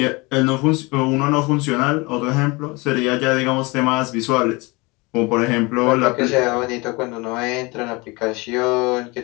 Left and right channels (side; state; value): right; quieter; 25.5 dB